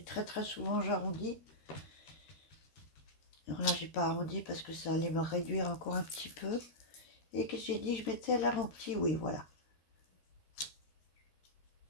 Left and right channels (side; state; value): right; late; 13 ms